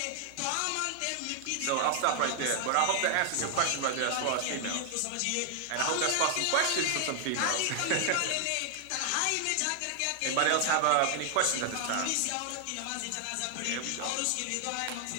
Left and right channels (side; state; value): both; different; correlation 0.00